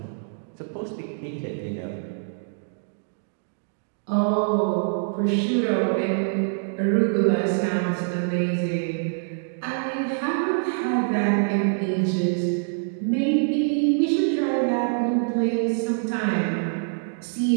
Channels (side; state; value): left; silent; digital silence